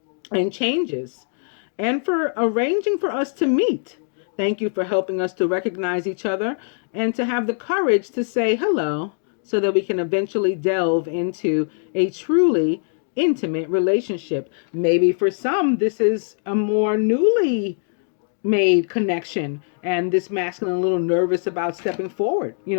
and changes, and for arranging for us to meet. Thank you for helping us to recognize each other and to have the courage to say hello so that we can eventually delve into a truly intimate relationship. Maybe for some, this is a more newly made connection, and this masculine a little nervous about stepping forward.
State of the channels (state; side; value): silent; right; digital silence